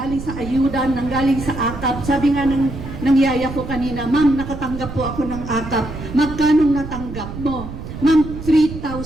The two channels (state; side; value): noise; right; rumble, 10 dB below the sound